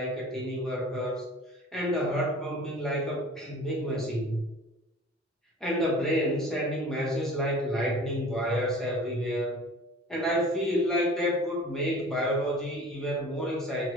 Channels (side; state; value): both; normal; correlation 0.43